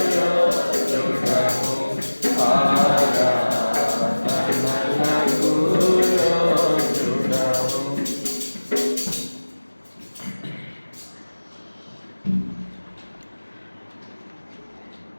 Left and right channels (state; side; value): inverted; both; correlation -1.00